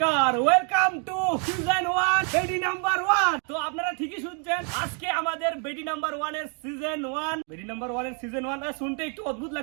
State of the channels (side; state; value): left; quieter; 39.5 dB